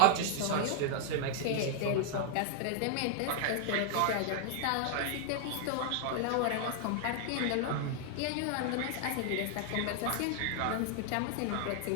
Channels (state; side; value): different; both; correlation 0.00